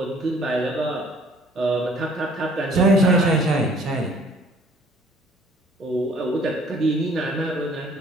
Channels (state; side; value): normal; both; correlation 0.56